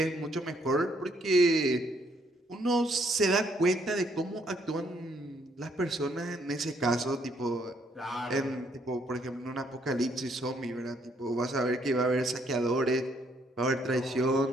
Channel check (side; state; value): both; normal; correlation 0.70